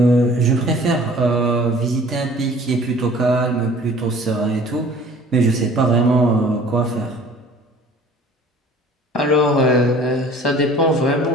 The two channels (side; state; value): both; normal; correlation 0.49